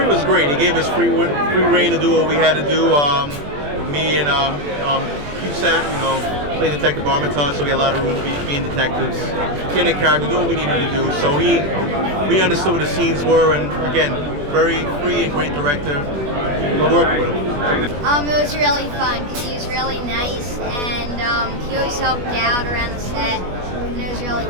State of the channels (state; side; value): late; left; 21 ms